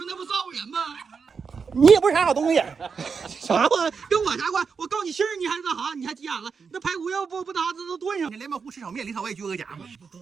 那不造人吗？你也不是啥好东西。啥话？跟我啥关？我告你信儿，你还那啥？你还急眼了？那排骨要不打这都炖上。你连毛糊吃炒面里头我也撅个夹嘛。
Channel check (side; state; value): left; quieter; 5.6 dB